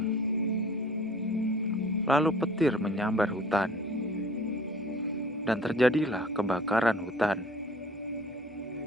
Lalu petir menyambar hutan, dan terjadilah kebakaran hutan.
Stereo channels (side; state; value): both; normal; correlation 0.49